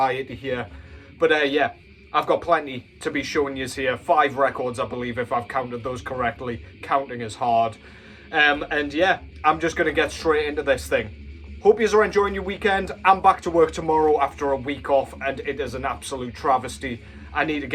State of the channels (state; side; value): identical; both; correlation 1.00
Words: here. But yeah, I've got plenty to be showing you here. 5 records, I believe, if I've counted those correctly. Counting is hard. And yeah, I'm just going to get straight into this thing. Hope you are enjoying your weekend. I'm back to work tomorrow after a week off, and it is an absolute travesty. I need to